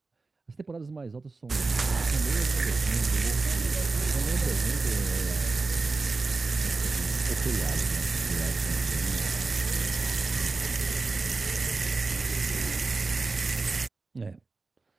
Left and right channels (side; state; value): left; quieter; 3.8 dB